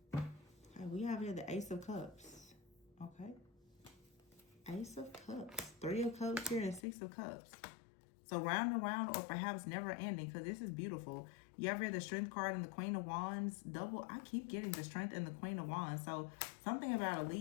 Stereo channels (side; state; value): right; drops out; at 6.9 s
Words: We have here the Ace of Cups. Okay. Ace of Cups. 3 of Cups here and 6 of Cups. So round and round, or perhaps never ending, because this is beautiful. You have here the Strength card and the Queen of Wands. Double. I keep getting the Strength and the Queen of Wands. So something about a